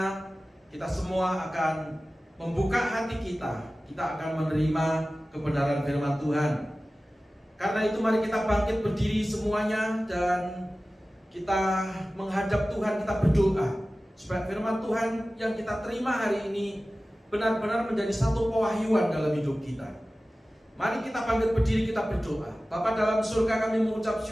kita semua akan membuka hati kita. Kita akan menerima kebenaran firman Tuhan. Karena itu mari kita bangkit berdiri semuanya dan kita menghadap Tuhan, kita berdoa supaya firman Tuhan yang kita terima hari ini benar-benar menjadi satu pewahyuan dalam hidup kita. Mari kita bangkit berdiri, kita berdoa. Bapa dalam surga, kami mengucap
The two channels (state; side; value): normal; both; correlation 0.96